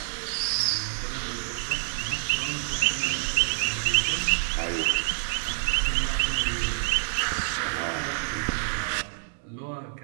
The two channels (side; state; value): left; silent; digital silence